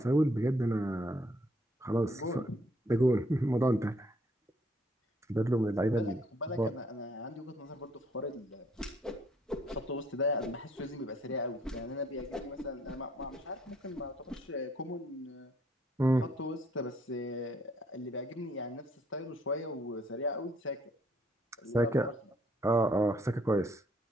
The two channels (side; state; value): both; normal; correlation 0.67